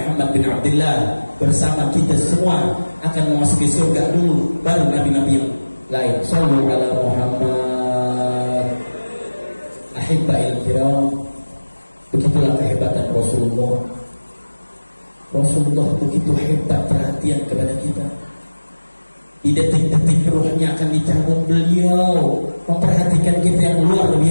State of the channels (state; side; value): inverted; both; correlation -1.00